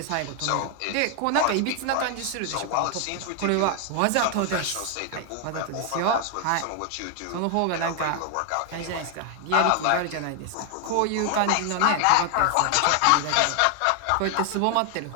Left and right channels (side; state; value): both; different; correlation 0.00